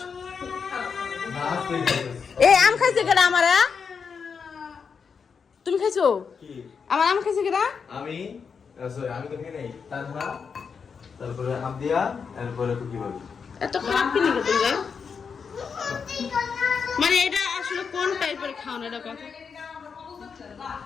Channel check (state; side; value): quieter; right; 6.0 dB